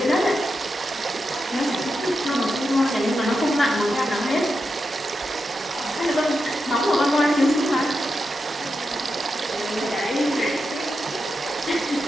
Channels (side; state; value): both; normal; correlation 0.88